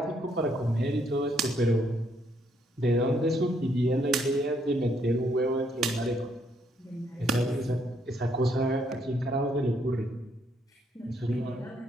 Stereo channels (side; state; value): both; normal; correlation 0.72